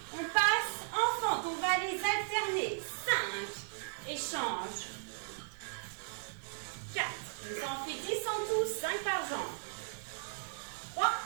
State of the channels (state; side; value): silent; left; digital silence